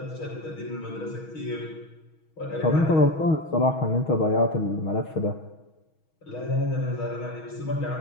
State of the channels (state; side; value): late; right; 6.3 ms